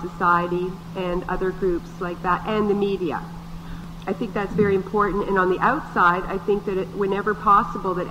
Society and other groups like that, and the media. I think that's very important. And on the outside, I think that whenever possible, that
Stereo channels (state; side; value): identical; both; correlation 1.00